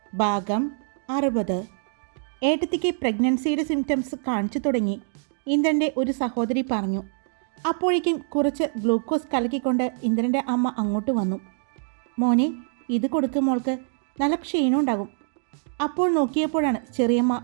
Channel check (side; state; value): left; silent; digital silence